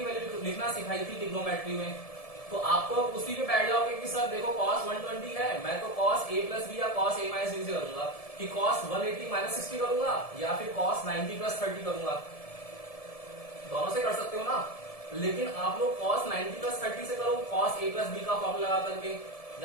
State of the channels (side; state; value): right; late; 1.7 ms